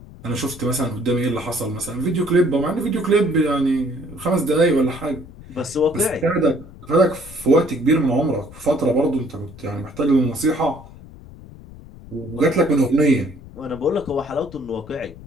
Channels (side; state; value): left; noise; rumble, 18 dB below the sound